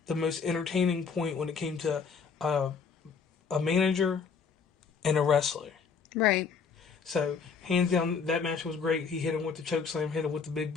the most entertaining point when it came to a manager and a wrestler. Right. So, hands down, that match was great. He hit him with the choke slam, hit him with the big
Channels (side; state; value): right; quieter; 5.8 dB